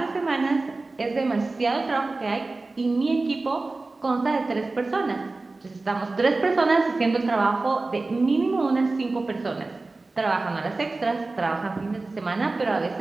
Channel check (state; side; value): quieter; left; 3.4 dB